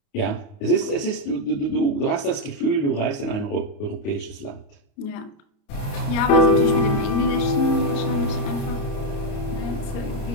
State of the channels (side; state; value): right; late; 29 ms